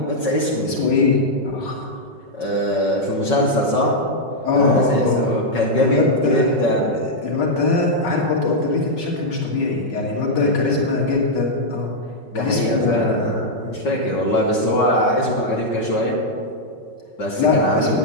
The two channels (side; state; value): right; late; 5.4 ms